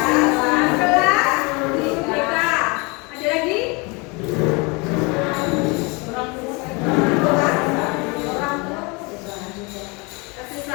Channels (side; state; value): right; quieter; 28.5 dB